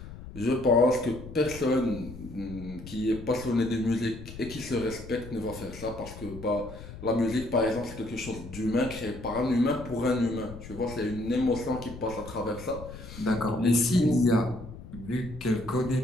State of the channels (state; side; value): noise; left; rumble, 13 dB below the sound